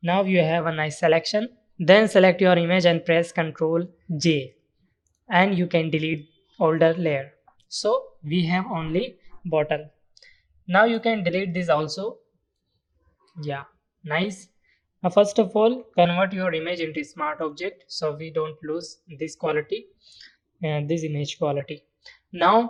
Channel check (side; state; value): both; identical; correlation 1.00